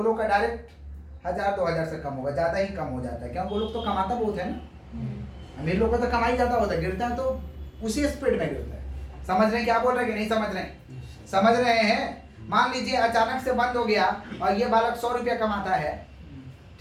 लोग का डायरेक्ट 1000-2000 से कम होगा, ज्यादा ही कम हो जाता है। क्योंकि वो लोग तो कमाता बहुत है ना, अमीर लोग का तो कमाई ज्यादा होता है, गिरता है तो उसी स्पीड में गिरता है। समझ रहे हैं क्या बोल रहे हैं कि नहीं समझ रहे हैं? समझ रहे हैं? मान लीजिए अचानक से बंद हो गया और ये बालक 100 रुपया कमाता है,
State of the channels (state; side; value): identical; both; correlation 1.00